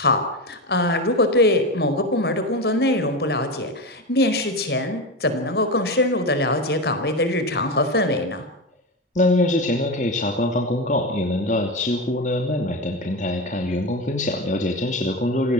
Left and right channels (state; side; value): normal; both; correlation 0.20